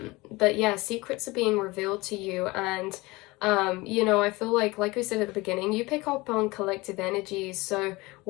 yeah, secrets are being revealed to you, and I feel like we said at the beginning, you pick up on collective energies. So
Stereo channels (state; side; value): quieter; right; 22.5 dB